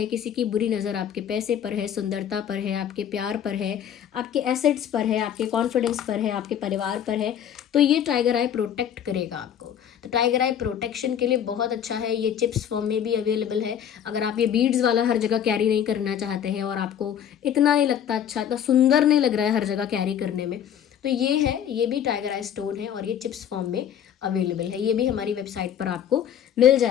किसी की बुरी नज़र आपके पैसे पर है, सुंदरता पर है, आपके प्यार पर है, आपके एसेट्स पर है, आपके कॉन्फिडेंस पर है, आपके परिवार पर है, तो ये टाइगर आई प्रोटेक्ट करेगा आपको। तो टाइगर आई प्रोटेक्शन के लिए बहुत अच्छा है। ये चिप्स फॉर्म में भी अवेलेबल है। अगर आप ये बीड्स वाला हर जगह कैरी नहीं करना चाहते हैं और आपको इतना नहीं लगता अच्छा, इतना सुंदर नहीं लग रहा है हर जगह कैरी करने में, तो ये है, ये भी टाइगर आई स्टोन है और ये चिप्स फॉर्म में अवेलेबल है। ये भी हमारी वेबसाइट पर आपको मिल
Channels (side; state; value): right; quieter; 9.3 dB